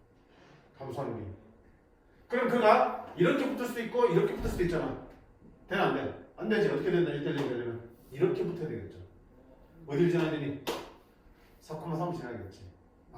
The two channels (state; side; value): identical; both; correlation 1.00